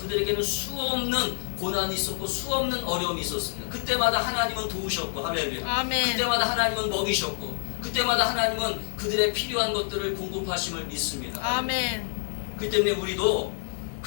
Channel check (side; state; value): right; silent; digital silence